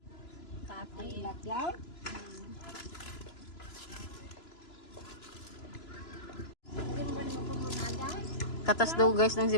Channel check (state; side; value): late; right; 3.0 ms